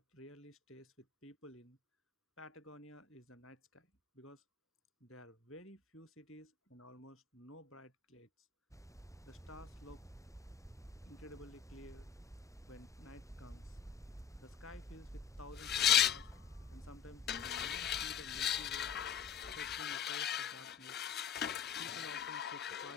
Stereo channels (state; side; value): quieter; right; 8.7 dB